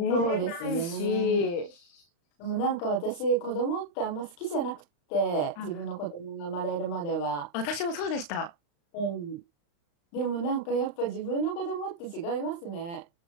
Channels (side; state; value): right; late; 35 ms